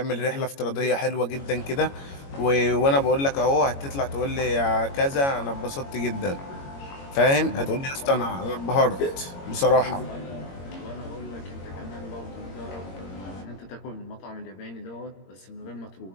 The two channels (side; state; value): right; late; 22 ms